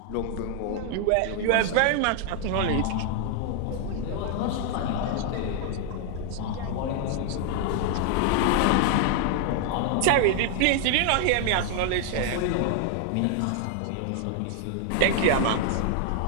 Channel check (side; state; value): both; different; correlation 0.00